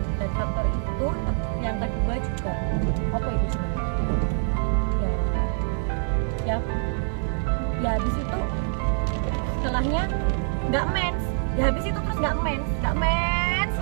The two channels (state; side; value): silent; left; digital silence